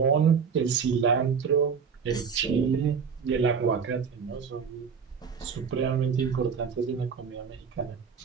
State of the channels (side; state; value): left; quieter; 6.3 dB